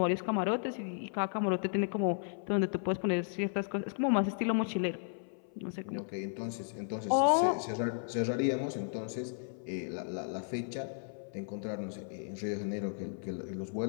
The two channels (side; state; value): right; silent; 55 dB below the other